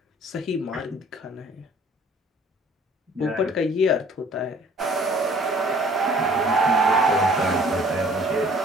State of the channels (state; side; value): normal; both; correlation 0.53